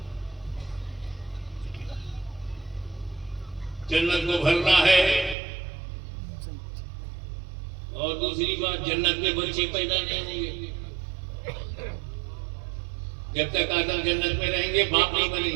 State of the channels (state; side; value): drops out; left; at 5.4 s